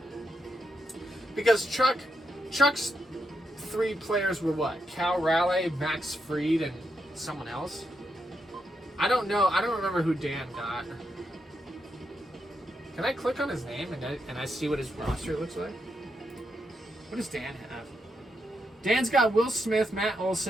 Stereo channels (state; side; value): normal; both; correlation 0.83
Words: because Chuck's 3 players were what? Cal Raleigh, Max Fried, and someone else? I don't know. I don't remember who Dan got. Can I click on his name and I see what his roster looks like? What does Dan have? Dan's got Will Smith, Matt